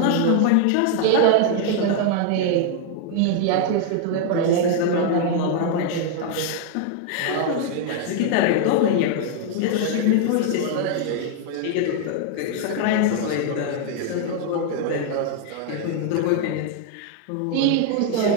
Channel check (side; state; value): both; different; correlation 0.00